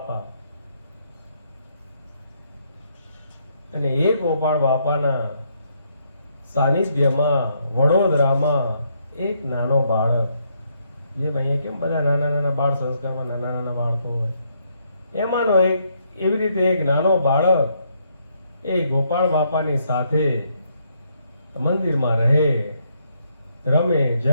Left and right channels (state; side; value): inverted; both; correlation -0.74